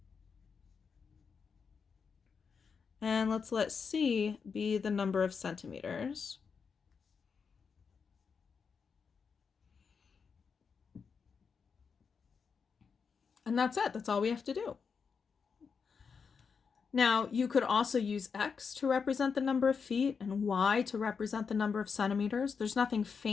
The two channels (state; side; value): quieter; right; 5.8 dB